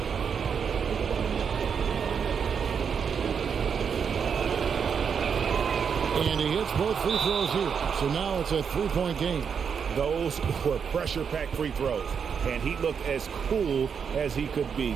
And he hits both free throws here. So now it's a 3-point game. Those were pressure-packed free throws, and he looked as cool as he could be.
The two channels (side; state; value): left; quieter; 6.7 dB